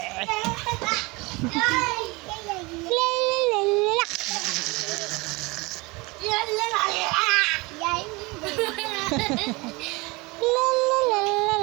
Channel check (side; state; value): left; quieter; 25.1 dB